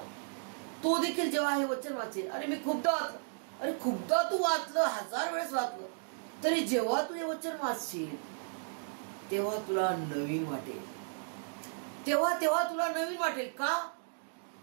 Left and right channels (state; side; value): silent; left; digital silence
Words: तो देखील जेव्हा हे वचन वाचेल, अरे मी खूपदा वाचलं, अरे खूपदा तू वाचलं, 1000 वेळेस वाचलं, तरी जेव्हा तू हे वचन वाचशील तेव्हा तुला नवीन वाटेल. तेव्हा तुला नवीन वाटेल. का?